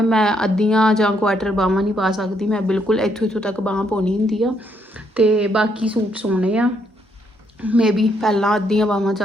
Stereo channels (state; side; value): normal; both; correlation 0.73